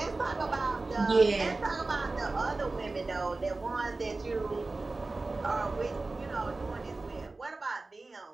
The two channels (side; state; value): left; quieter; 3.4 dB